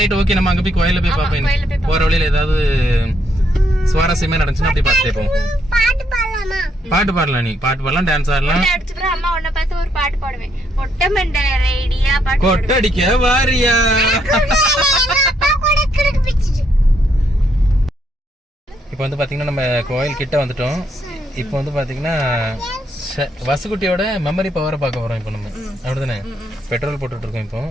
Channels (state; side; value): normal; both; correlation 0.74